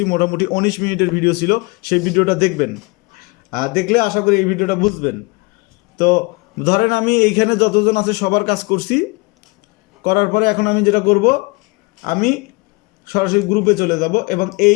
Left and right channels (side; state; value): right; quieter; 27.5 dB